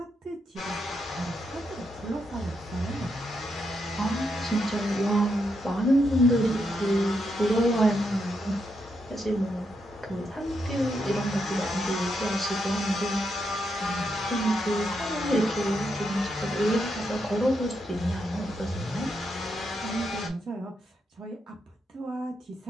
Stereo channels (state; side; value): normal; both; correlation 0.81